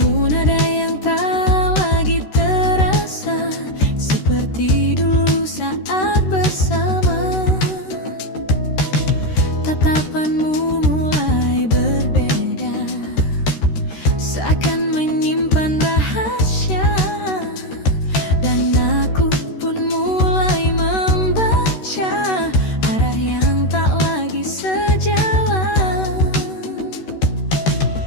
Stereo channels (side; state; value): right; late; 13 ms